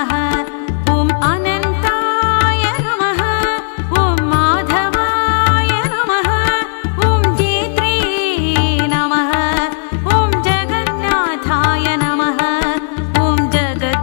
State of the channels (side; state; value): right; silent; digital silence